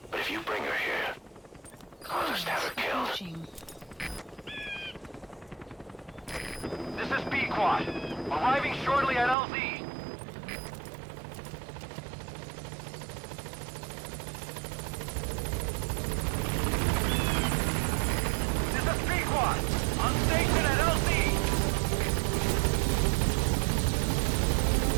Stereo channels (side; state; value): left; drops out; at 9.3 s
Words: But if you bring her here, I'll just have her killed. This is B-Quad. Arriving shortly at LZ.